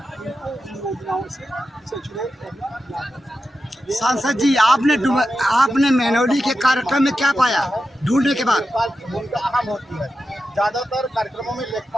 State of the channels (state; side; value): normal; both; correlation 0.90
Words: उनको इन योजनाओं से सचुरेट करना लागू। सांसद जी, आपने मेहनौली के कार्यक्रम में क्या पाया ढूंढने के बाद? लेखपाल की भूमिका अहम होती है। ज़्यादातर कार्यक्रमों में